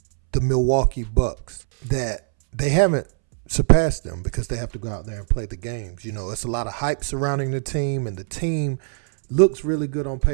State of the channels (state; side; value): silent; left; 64 dB below the other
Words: the Milwaukee Bucks that they haven't surpassed them because they have to go out there and play the games. You know, it's a lot of hype surrounding the team, and the team looks really good on